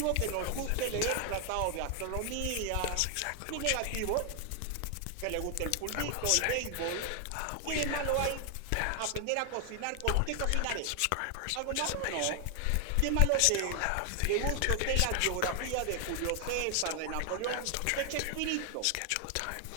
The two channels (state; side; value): different; both; correlation 0.00